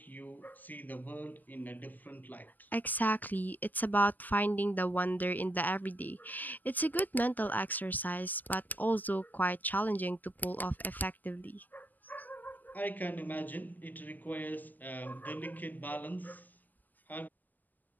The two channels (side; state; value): right; late; 0.084 ms